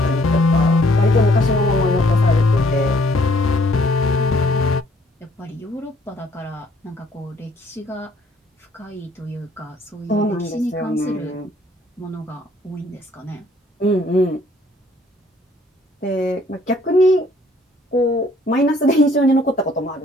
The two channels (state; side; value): normal; both; correlation 0.62